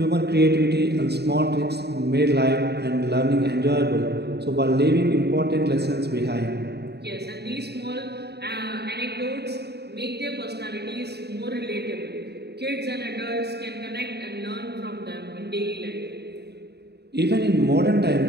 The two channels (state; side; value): late; left; 0.48 ms